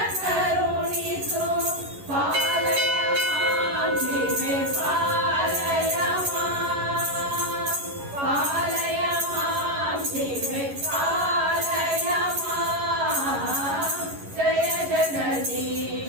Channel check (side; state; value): left; late; 11 ms